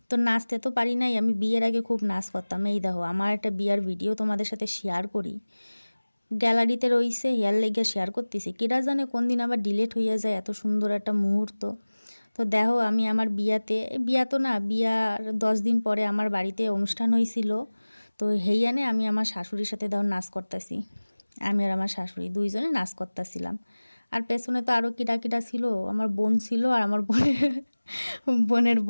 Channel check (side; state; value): both; inverted; correlation -1.00